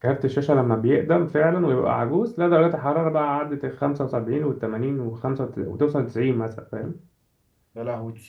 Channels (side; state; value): both; identical; correlation 1.00